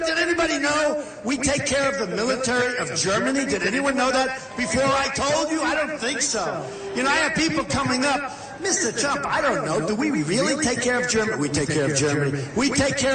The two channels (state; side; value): identical; both; correlation 1.00